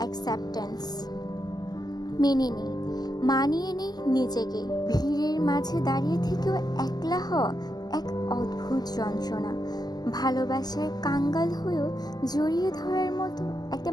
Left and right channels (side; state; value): right; late; 0.20 ms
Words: মেনে নিই, মানিয়ে নিই নিজেকে। ভিড়ের মাঝে দাঁড়িয়ে থেকেও একলা হওয়া এক অদ্ভুত যন্ত্রণা। ভালোবাসার কাঙ্গাল হয়েও জড়িয়ে ধরার মতো একটা